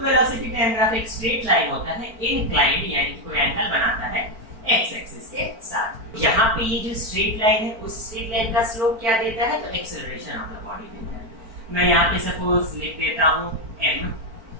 टाइम ग्राफ एक स्ट्रेट लाइन होता है, इंक्लाइंड यानी कि कोई एंगल बनाता है एक्स एक्सिस के साथ। यहाँ पे ये जो स्ट्रेट लाइन है उस स्ट्रेट लाइन का स्लोप क्या देता है? तो एक्सेलरेशन ऑफ द बॉडी देता है। मैं यहाँ पे सपोज लिख देता हूँ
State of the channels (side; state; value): left; late; 4.4 ms